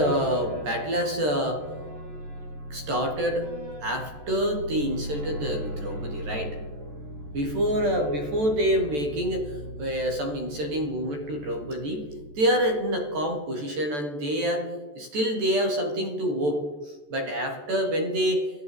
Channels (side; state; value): left; late; 14 ms